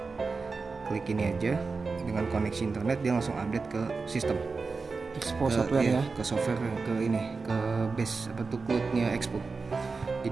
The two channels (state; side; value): quieter; left; 4.3 dB